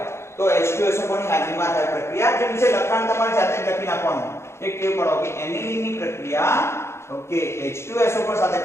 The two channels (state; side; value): late; right; 0.13 ms